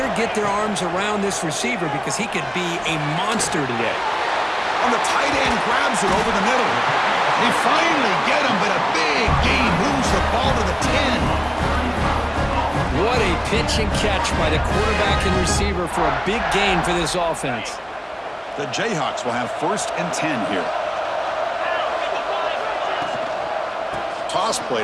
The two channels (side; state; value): both; identical; correlation 1.00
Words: get their arms around this receiver because he could be a monster today. On the tight end, grabs it over the middle. They finally get him, but a big gain moves the ball to the 10. What a pitch and catch by the quarterback and receiver for a big gain for this offense. The Jayhawks will have 1st and 10 here. Toss play